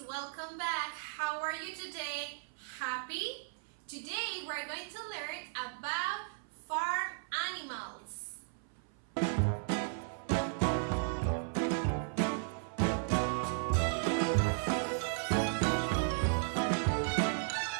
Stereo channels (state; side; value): silent; left; 54 dB below the other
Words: welcome back. How are you today? Happy? Today we're going to learn about farm animals.